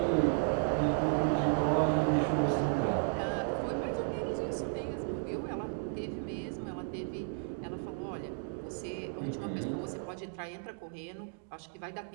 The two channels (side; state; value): left; silent; 55 dB below the other